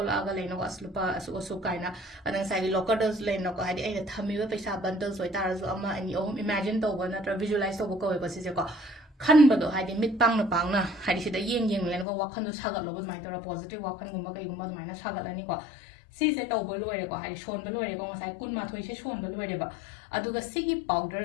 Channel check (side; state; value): right; drops out; at 12.1 s